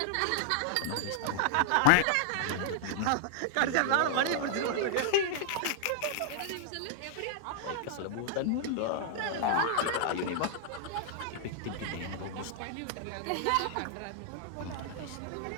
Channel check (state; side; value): different; both; correlation -0.01